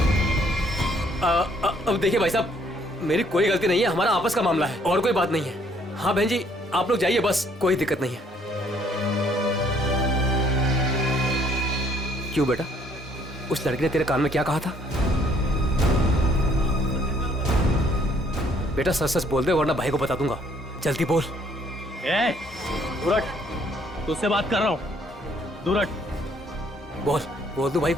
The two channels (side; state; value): both; normal; correlation 0.64